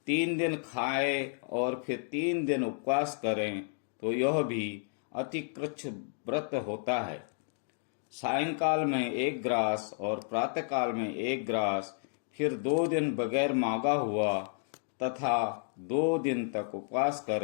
3 दिन खाए और फिर 3 दिन उपवास करें तो यह भी अतिकृच्छ व्रत होता है। सायंकाल में 1 ग्रास और प्रातःकाल में 1 ग्रास, फिर 2 दिन बगैर मांगा हुआ तथा 2 दिन तक उपवास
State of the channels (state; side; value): silent; right; digital silence